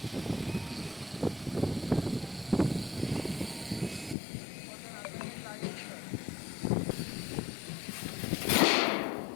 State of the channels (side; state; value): right; drops out; at 4.2 s